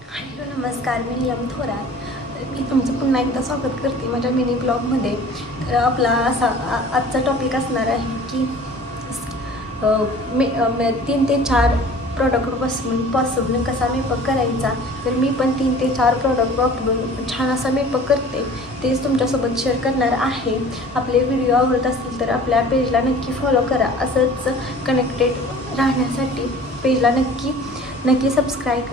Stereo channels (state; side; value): normal; both; correlation 0.46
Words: हॅलो नमस्कार, मी नीलम थोरात. मी तुमचं पुन्हा एकदा स्वागत करते माझ्या मिनी ब्लॉगमध्ये. तर आपला असा आजचा टॉपिक असणार आहे की 3 ते 4 प्रॉडक्टपासून पॉसिबल कसा मेकअप करायचा. तर मी पण 3 ते 4 प्रॉडक्ट वापरून छान असा मेकअप करते, तेच तुमच्यासोबत शेअर करणार आहे. आपले व्हिडिओ आवडत असतील तर आपल्या पेजला नक्की फॉलो करा. असंच कनेक्टेड राहण्यासाठी पेजला नक्की सबस्क्राईब